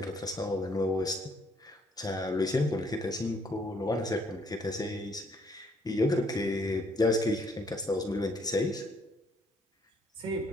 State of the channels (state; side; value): normal; both; correlation 0.68